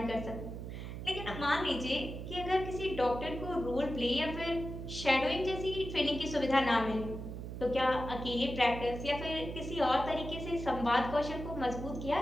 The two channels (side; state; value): right; noise; hum, 8 dB below the sound